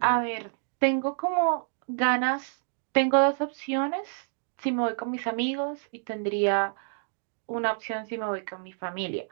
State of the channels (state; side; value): silent; left; digital silence